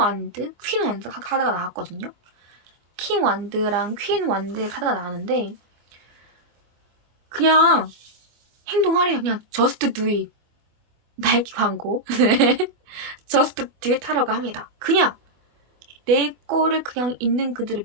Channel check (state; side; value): late; left; 24 ms